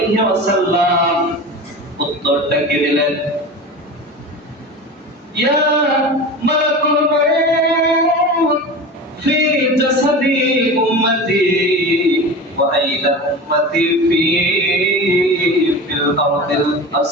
ওয়াসাল্লাম উত্তরটা কি দিলেন? ইয়া মালাকুল মউত ফি জাসাদি উম্মতি ওয়া আইলা উম্মতি ফিল আরদিল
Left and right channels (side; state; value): both; normal; correlation 0.30